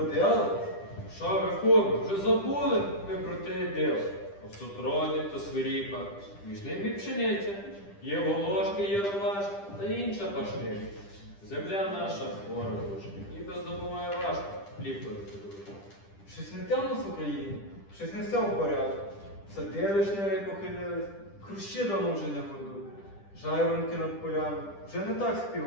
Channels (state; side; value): late; right; 10 ms